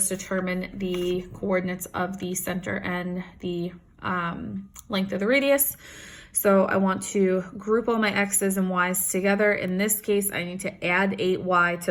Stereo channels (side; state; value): both; identical; correlation 1.00